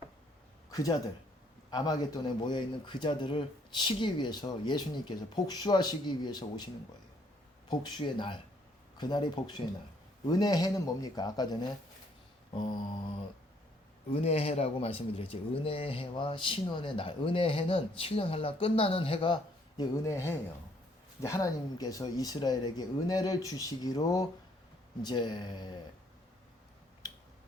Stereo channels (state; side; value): normal; both; correlation 0.66